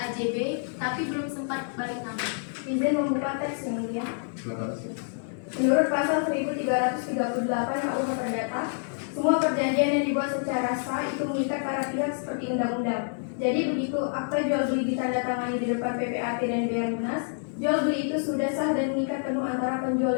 tapi belum sempat balik nama? Izin membuka teks yang mulia. Silakan. Menurut pasal 1338 KUH Perdata, semua perjanjian yang dibuat secara sah itu mengikat para pihak seperti undang-undang. Jadi begitu akta jual beli ditandatangani di depan PPAT dan BR Lunas, jual beli itu sudah sah dan mengikat penuh antara penjual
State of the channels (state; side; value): silent; right; digital silence